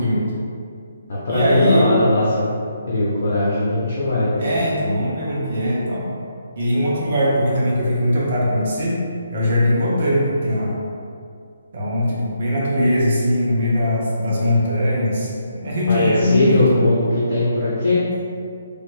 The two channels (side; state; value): both; inverted; correlation -0.77